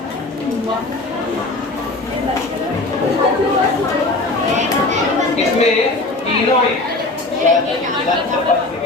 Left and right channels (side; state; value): right; quieter; 3.0 dB